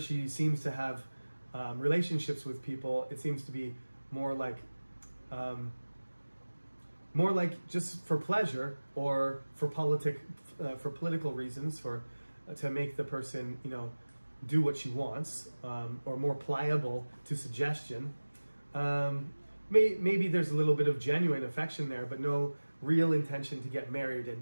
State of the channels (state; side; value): inverted; both; correlation -1.00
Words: seems to have relationships with people, it seems to be more like just for pleasure or for political reasons, to make the person do what she wants, or more pliable to suggestion. Maybe there's a little bit of genuine affection there, but no real intention to get married